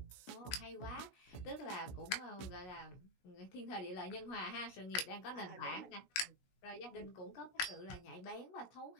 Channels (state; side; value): late; right; 16 ms